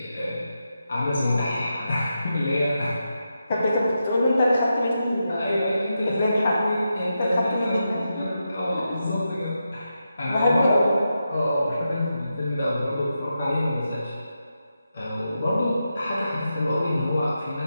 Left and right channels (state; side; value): inverted; both; correlation -0.87